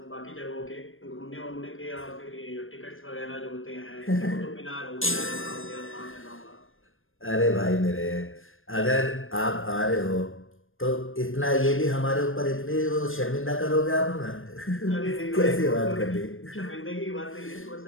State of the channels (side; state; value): right; late; 0.59 ms